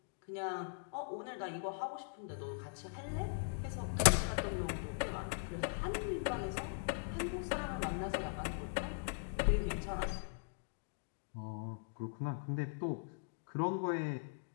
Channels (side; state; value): right; silent; digital silence